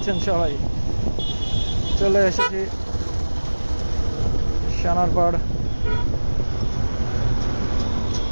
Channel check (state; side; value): inverted; both; correlation -1.00